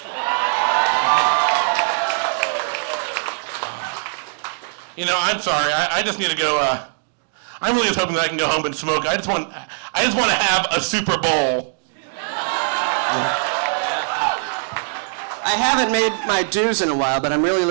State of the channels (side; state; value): left; silent; digital silence